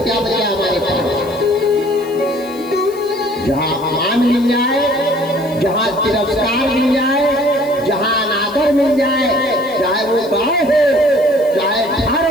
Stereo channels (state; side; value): noise; left; hiss, 22 dB below the sound